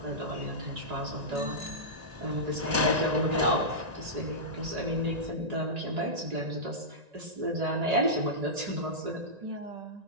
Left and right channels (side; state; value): left; late; 1.9 ms